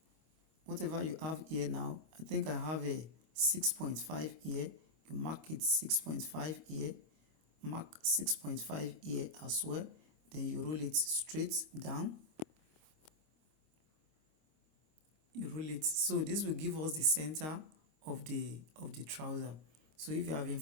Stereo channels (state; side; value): late; left; 25 ms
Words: whatever you have here now, I think I have a 6.5 here. You mark it 6.5 here, mark 6.5 here as well. Then you roll it straight down. you roll it. So this will give us the center of the trouser. So if you have been